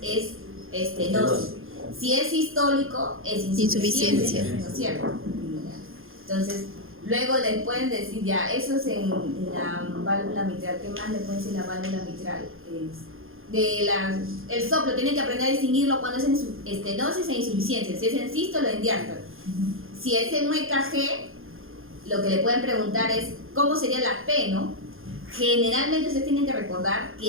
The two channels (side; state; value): left; late; 0.60 ms